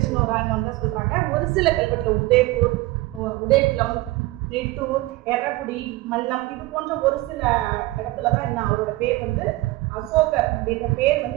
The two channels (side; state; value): left; quieter; 19.5 dB